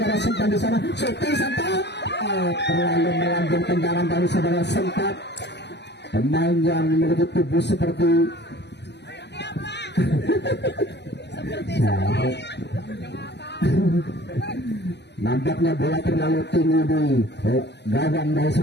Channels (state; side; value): late; right; 0.50 ms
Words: Sentat di sana. Syuting Sentat. Terlalu melambung tendangan dari saudara Sentat. Pemain yang memiliki tubuh seperti nampaknya bola terlalu tinggi di gawang dari